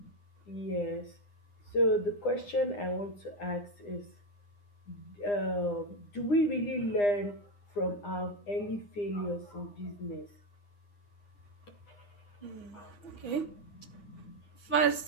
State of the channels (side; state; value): right; late; 9.8 ms